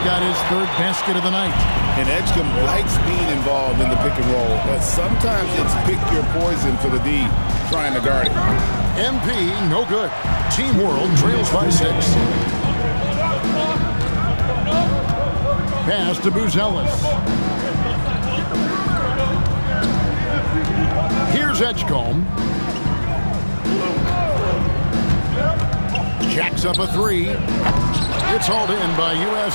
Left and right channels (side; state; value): both; inverted; correlation -1.00